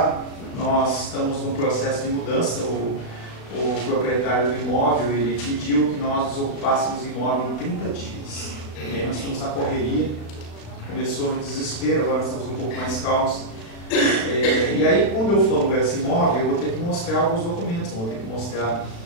nós estamos num processo de mudança. O proprietário do imóvel, ele pediu que nós desocupássemos o imóvel em 30 dias. E aí nós estamos na correria, começou no desespero, agora nós estamos um pouco mais calmos. E aí, quando eu for alugar esse imóvel, eu vou ter que mostrar alguns documentos, vou ter que mostrar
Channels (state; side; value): late; right; 36 ms